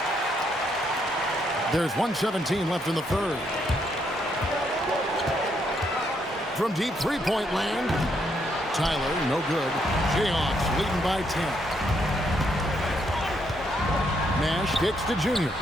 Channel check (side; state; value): both; normal; correlation 0.75